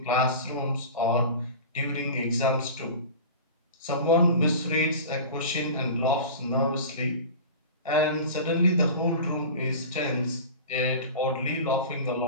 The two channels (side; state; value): both; inverted; correlation -0.34